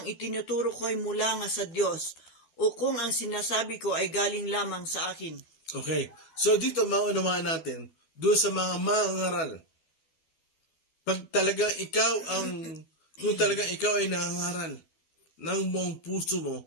itinuturo ko ay mula nga sa Diyos o kung ang sinasabi ko ay galing lamang sa akin. Okay. So dito maunawaan natin doon sa mga mangaral. Kung talagang ikaw ay nangangaral ng buong puso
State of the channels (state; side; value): late; right; 12 ms